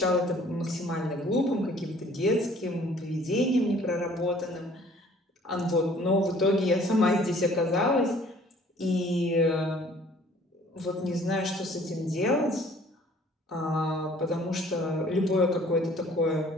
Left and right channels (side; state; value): both; normal; correlation 0.55